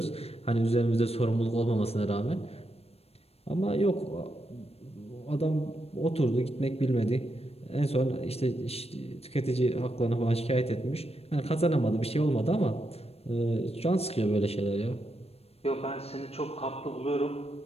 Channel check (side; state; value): right; late; 0.29 ms